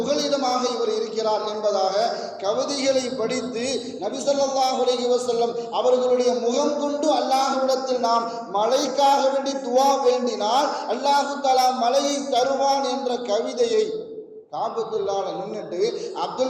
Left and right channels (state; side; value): identical; both; correlation 1.00